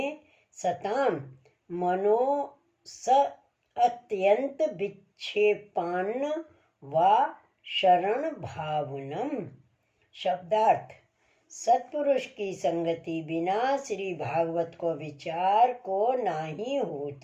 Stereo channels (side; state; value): both; identical; correlation 1.00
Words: सताम मनो स अत्यंत विक्षेपान्न व शरण भावनम। शब्दार्थ: सत्पुरुष की संगति बिना श्री भागवत को विचार को नाही